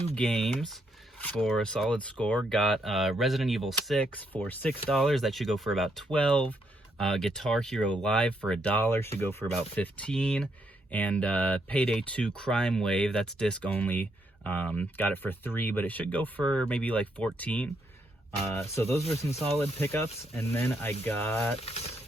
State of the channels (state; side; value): normal; both; correlation 0.76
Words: games for a solid score. Got Resident Evil 6 for $6. That should go for about 12. Guitar Hero Live for $1 should go for about 15. And Payday 2 Crime Wave, that's disc only, got it for 3, but it should go for maybe like 14. So those were some solid pickups. And then I got